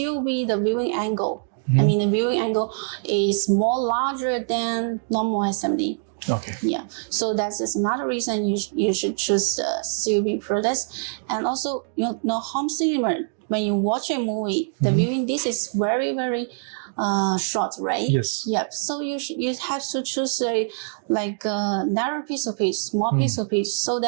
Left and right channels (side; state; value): left; silent; digital silence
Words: the viewing angle. The viewing angle is more larger than normal SMD. Okay. Yeah. So that's just another reason you should choose COB products. And also, home cinema, when you watch a movie, the viewing this is very, very short, right? Yes. Yep. So you have to choose a narrow piece of pitch, small piece of pitch, so